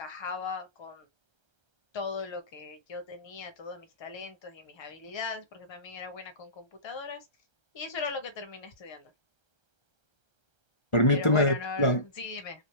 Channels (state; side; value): late; right; 1.3 ms